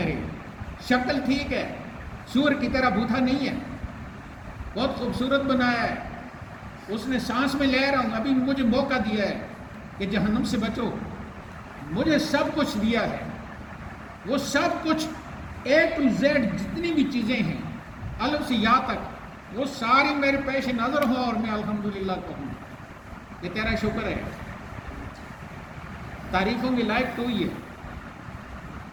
شکل ٹھیک ہے، سور کی طرح بوتھا نہیں ہے، بہت خوبصورت بنایا ہے، اس نے سانس میں لے رہا ہوں، ابھی مجھے موقع دیا ہے کہ جہنم سے بچو، مجھے سب کچھ دیا ہے، وہ سب کچھ A to Z جتنی بھی چیزیں ہیں الف سے یا تک وہ ساری میرے پیش نظر ہوں اور میں الحمدللہ کہوں، یہ تیرا شکر ہے۔ تعریفوں کی لائق تو ہی ہے۔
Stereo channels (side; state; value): both; identical; correlation 1.00